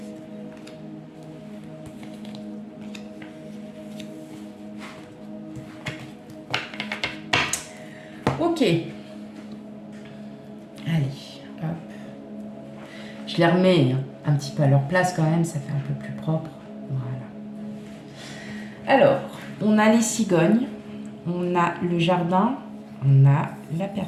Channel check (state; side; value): identical; both; correlation 1.00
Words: Ok. Allez, hop. Je les remets un petit peu à leur place quand même, ça fait un peu plus propre. Voilà. Alors, on a les cigognes, on a le jardin, on a la